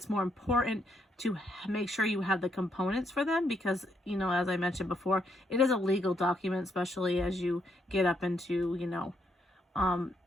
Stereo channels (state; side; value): normal; both; correlation 0.75